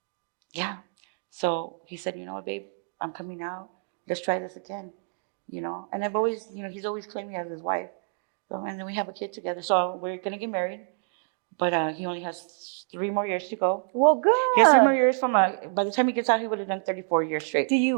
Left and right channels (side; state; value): left; silent; 60 dB below the other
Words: so he said, you know what, babe, I'm coming out. Let's try this again. And I've always, he's always claimed me as his wife. So, and then we have a kid together. So we're going to get married. But he only has 3 more years to go. Well, good. He has 3 more years by the time he gets out, he would have done 34 years straight. Do